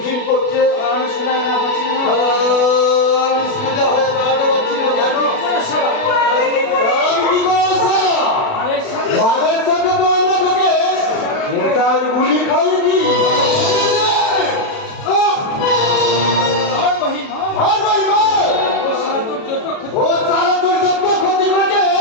করছে? আমি সোজা না পাচ্ছি না আমি সোজা হয়ে দাঁড়াতে পারছি না কেন? আমি কি করবো? আরে সাথে বাঘের সাথে তো আমরা তোকে নেতার গুলি খাইছি। আর মহিম আর ভাই ভাই, ও সারা তোর যত ক্ষতি ও সারা তোর যত ক্ষতি করেছে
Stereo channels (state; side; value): late; right; 36 ms